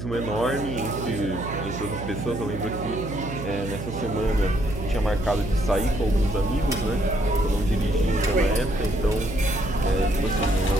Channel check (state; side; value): noise; right; hum, 7 dB below the sound